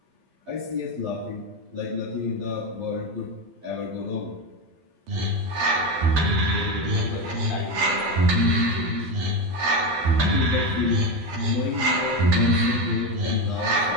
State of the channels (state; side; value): late; left; 12 ms